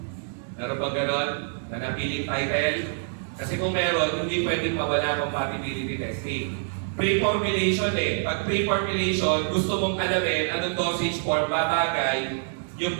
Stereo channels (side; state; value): left; silent; digital silence